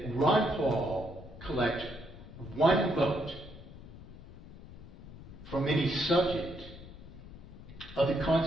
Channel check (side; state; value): left; noise; rumble, 16 dB below the sound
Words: Ron Paul collect one vote from any subject of the